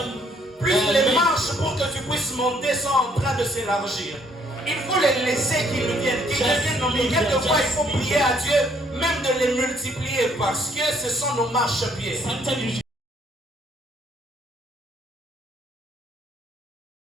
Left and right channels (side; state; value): both; normal; correlation 0.66